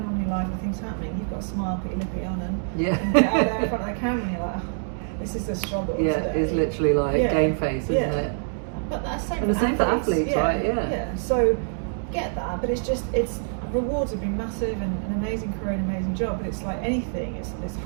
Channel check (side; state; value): left; silent; digital silence